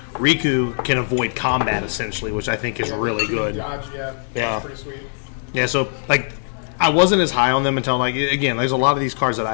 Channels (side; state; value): right; silent; digital silence